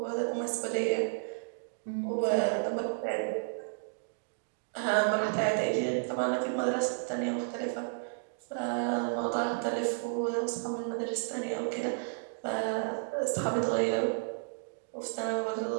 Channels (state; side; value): silent; left; digital silence